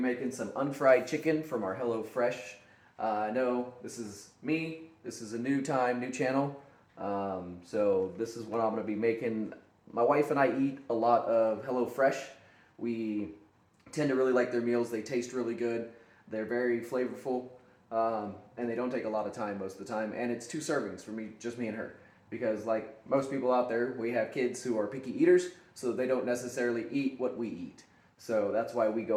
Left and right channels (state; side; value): identical; both; correlation 1.00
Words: making some unfried chicken from our HelloFresh. I know this is me, this is a new channel, so this is what I'm going to be making. My wife and I eat a lot of HelloFresh. We tend to really like their meals. They taste really good, they're very flavorful, and they don't take a lot of time most of the time, and it's 2 servings for me, just me and her. Because like most people out there, we have kids who are picky eaters, so they don't necessarily eat what we eat. So that's why we